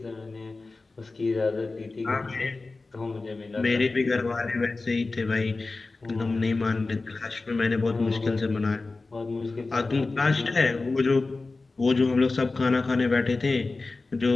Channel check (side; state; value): right; quieter; 3.6 dB